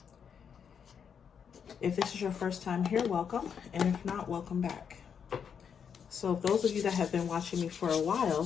If this is your first time here, welcome, and if not, welcome back. So those of you that have been watching me for a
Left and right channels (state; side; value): quieter; right; 7.2 dB